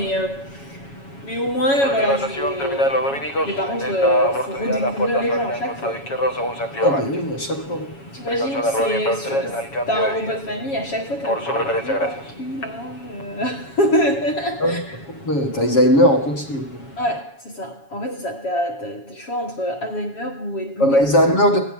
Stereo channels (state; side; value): late; right; 7.2 ms